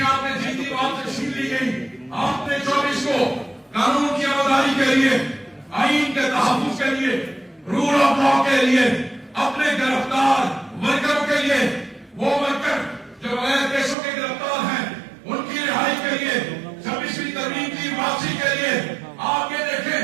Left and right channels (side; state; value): left; drops out; at 14.0 s